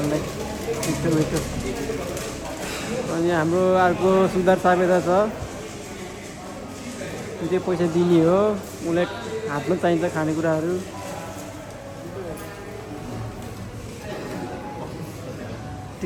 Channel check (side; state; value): both; identical; correlation 1.00